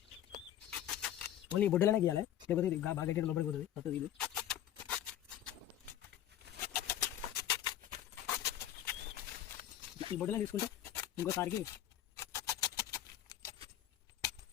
ఓన్లీ బొడ్డులోనే గీయాలి, లేకపోతే ఇది బాగా గట్టిగా లోపలికి పోతుంది. మొత్తం ఇది ఈ బొడ్డులో తీసుకుంటే ఇంకోసారికి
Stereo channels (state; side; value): quieter; right; 11.7 dB